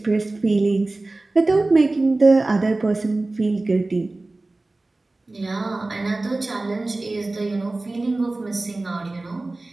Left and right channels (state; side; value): quieter; left; 3.0 dB